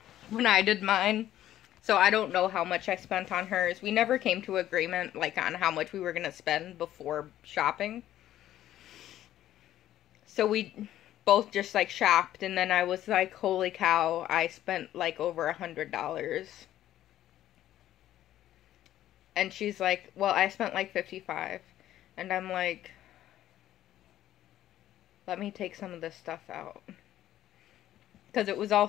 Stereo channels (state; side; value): quieter; right; 12.8 dB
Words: when I did mine. So I don't know how much I spent on hers. We never came to agreement like on how much we were going to spend before shopping. So we both just like shopped, and then I was like, holy cow, I spent like over $100. And she's like, well, I spent like $55. And I'm like, let me take some of this stuff out. Because it was